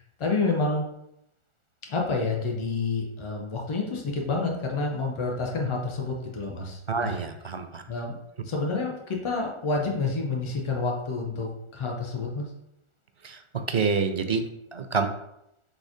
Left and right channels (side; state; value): right; late; 1.4 ms